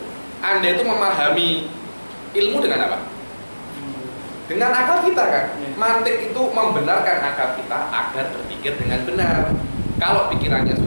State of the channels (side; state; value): both; inverted; correlation -1.00